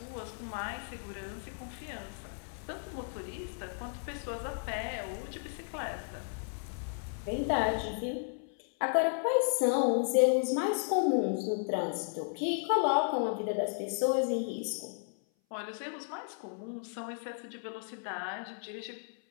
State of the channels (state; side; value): silent; right; 55 dB below the other